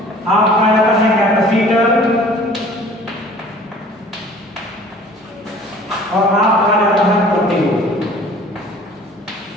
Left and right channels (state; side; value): normal; both; correlation 0.49